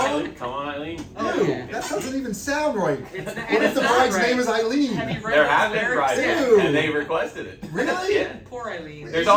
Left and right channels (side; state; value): both; identical; correlation 1.00